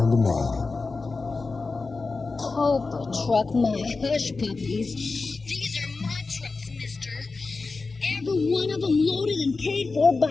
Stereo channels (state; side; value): quieter; right; 4.0 dB